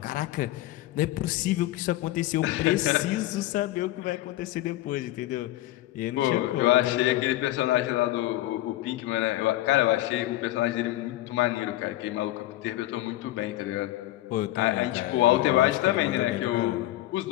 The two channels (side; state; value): right; quieter; 16.1 dB